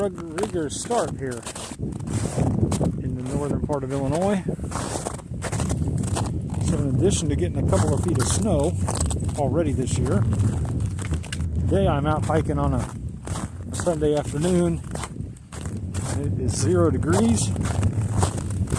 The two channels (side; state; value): both; identical; correlation 1.00